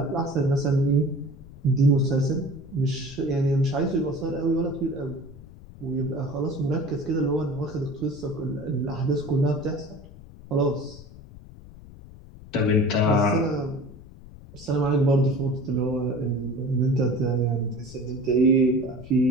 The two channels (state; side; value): noise; left; rumble, 18 dB below the sound